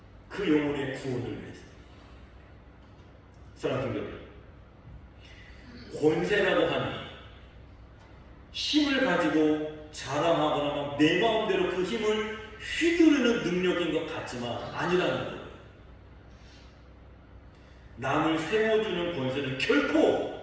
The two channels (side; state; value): both; identical; correlation 1.00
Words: 그 영혼의 구원을 위해서. 사랑하는 여러분, 권세라고 하니 힘을 가지고 자랑하거나 내 마음대로 그 힘을 휘두르는 능력인 것 같지만 아니라는 거예요. 남을 세워주는 권세는 결코